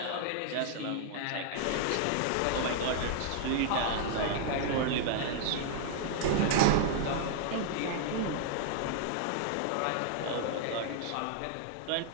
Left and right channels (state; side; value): different; both; correlation -0.01